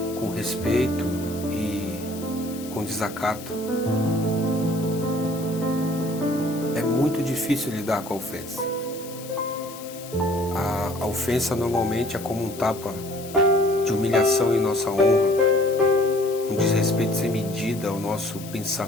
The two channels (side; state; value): left; noise; hiss, 15 dB below the sound